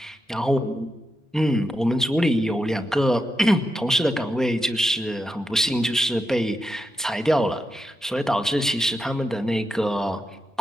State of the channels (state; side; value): normal; both; correlation 0.87